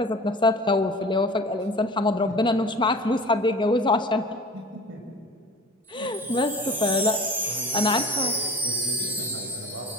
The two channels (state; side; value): normal; both; correlation 0.39